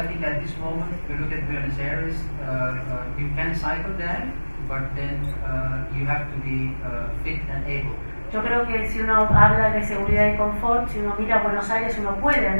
think at this moment, if you look at Buenos Aires, you can cycle there, but then you have to be fit and able. Yo creo que si uno habla de seguridad y confort, si uno mira Buenos Aires, uno puede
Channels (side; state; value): both; inverted; correlation -1.00